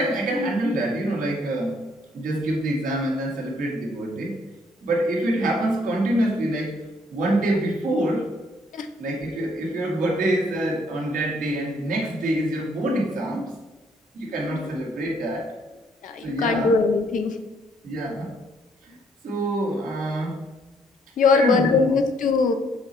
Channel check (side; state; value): both; normal; correlation 0.67